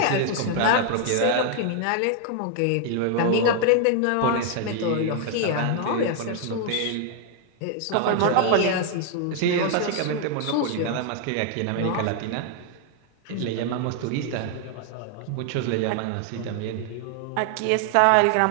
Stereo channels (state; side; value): different; both; correlation 0.00